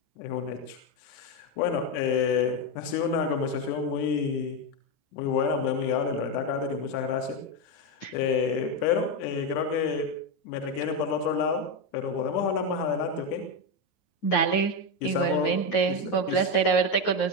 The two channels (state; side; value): late; right; 9.4 ms